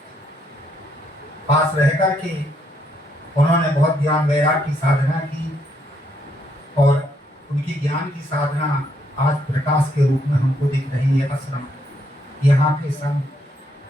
पास रह करके उन्होंने बहुत ज्ञान वैराग की साधना की और उनकी ज्ञान की साधना आज प्रकाश के रूप में हमको दिख रही है। आश्रम, यहाँ के संत,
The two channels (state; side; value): normal; both; correlation 0.73